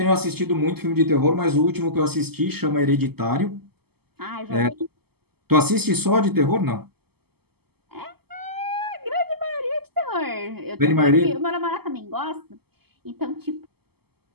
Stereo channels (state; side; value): late; left; 0.96 ms